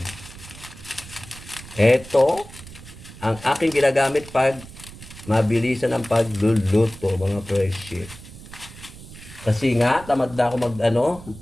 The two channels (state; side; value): noise; right; rumble, 17 dB below the sound